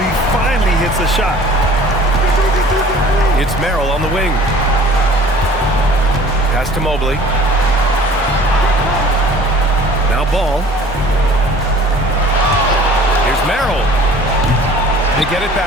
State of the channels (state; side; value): noise; left; hum, 15 dB below the sound